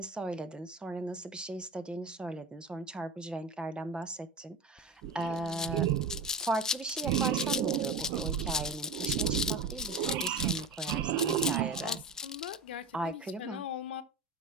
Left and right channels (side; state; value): left; quieter; 3.3 dB